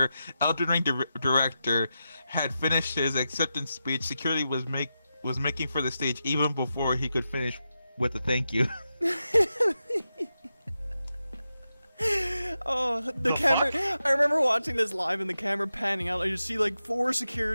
Elden Ring director had finished his acceptance speech, security was making for the stage even before he could finish with a thank you. Oh, the camera! Fuck? I remember watching this live and the camera panning out. I just see like 4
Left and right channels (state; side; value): inverted; both; correlation -0.89